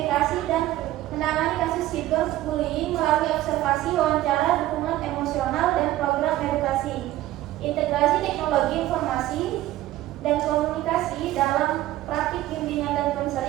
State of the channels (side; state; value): left; quieter; 15.2 dB